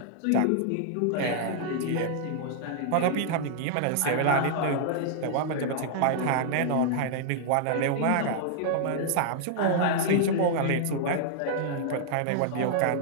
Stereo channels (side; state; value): both; different; correlation -0.01